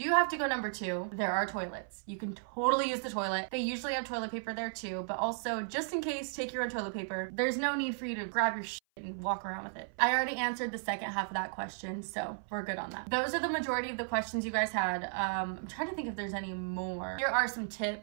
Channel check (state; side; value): silent; left; 55 dB below the other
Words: have to go number 2, there are toilets. You can totally use the toilet. They usually have toilet paper there too, but also just in case, take your own toilet paper. There's no need for you to grab your and walk around with it. I already answered the second half of that question, so we're good on that. Those are the majority of the questions you guys had. I'm trying to think if there's any more. Here are some